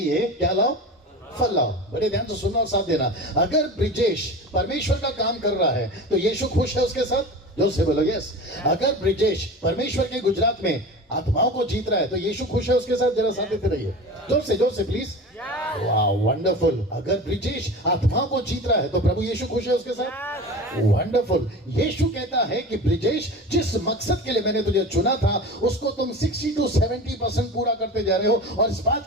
क्या लाओ? फल लाओ। बड़े ध्यान से सुनना और साथ देना। अगर ब्रिजेश परमेश्वर का काम कर रहा है तो यीशु खुश है उसके साथ? जोर से बोलो यस। अगर ब्रिजेश परमेश्वर के गुजरात में आत्माओं को जीत रहा है तो यीशु खुश है उसके साथ? जरा साथ देते रहिए, जोर से प्लीज। वाह, वंडरफुल। अगर ब्रिजेश आत्माओं को जीत रहा है तो प्रभु यीशु खुश है उसके साथ? वंडरफुल। यीशु कहता है कि ब्रिजेश, जिस मकसद के लिए मैंने तुझे चुना था उसको तुम 60 to 70% पूरा करते जा रहे हो और इस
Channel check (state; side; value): normal; both; correlation 0.33